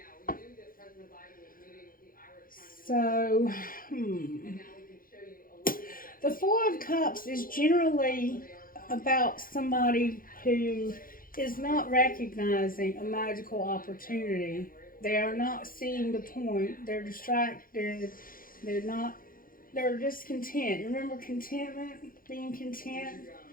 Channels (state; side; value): late; right; 0.41 ms